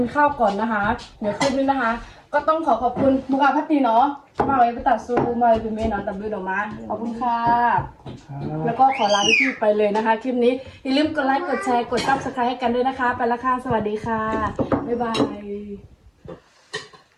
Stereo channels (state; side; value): identical; both; correlation 1.00